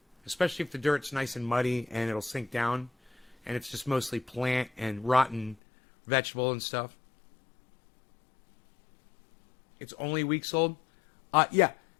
especially if the dirt's nice and muddy and it'll sink down, and it's just mostly plant and rotten vegetable and stuff. It's only weeks old. Yeah,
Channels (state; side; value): drops out; right; at 5.6 s